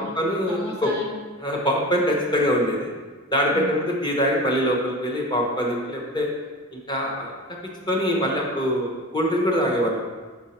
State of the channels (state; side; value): normal; both; correlation 0.33